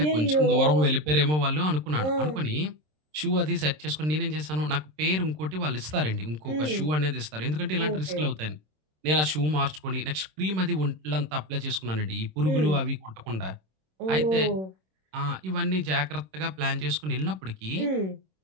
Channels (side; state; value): left; late; 26 ms